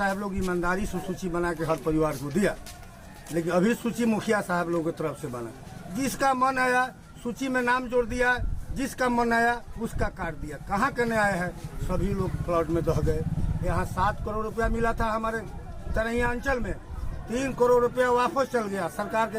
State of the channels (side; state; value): both; identical; correlation 1.00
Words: लोग ईमानदारी से सूची बना के हर परिवार को दिया, लेकिन अभी सूची मुखिया साहब लोगों की तरफ से बना। जिसका मन आया सूची में नाम जोड़ दिया, जिसका मन आया उसका काट दिया। कहाँ करने आए हैं? सभी लोग फ्लड में दह गए। यहाँ 7 करोड़ रुपया मिला था हमारे तरैया अंचल में, 3 करोड़ रुपया वापस चल गया, सरकार